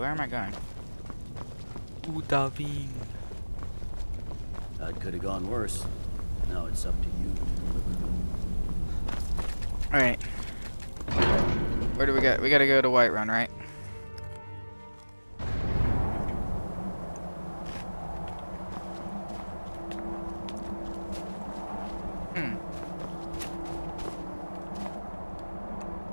am I going? Odahving. That could have gone worse. Now it's up to you to deliver. Alright. Where do we go? We gotta go to Whiterun, right?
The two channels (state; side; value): inverted; both; correlation -1.00